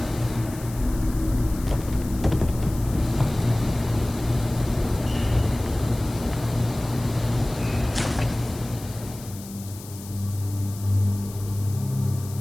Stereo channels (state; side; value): noise; left; hiss, 16 dB below the sound